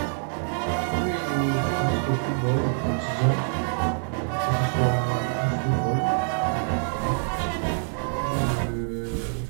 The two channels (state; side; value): silent; left; 61 dB below the other